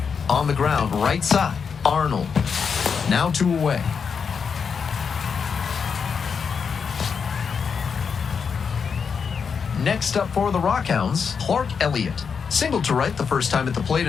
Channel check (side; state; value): right; quieter; 6.1 dB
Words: On the ground, right side, Arnold. Now 2 away. Next up for the Rockhounds, Clark Elliott. Single to right the first time at the plate